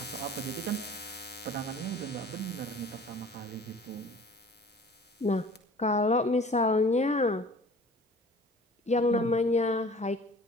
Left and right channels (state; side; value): normal; both; correlation 0.47